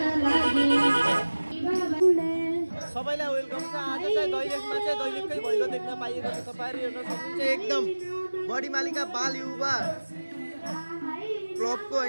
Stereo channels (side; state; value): both; inverted; correlation -1.00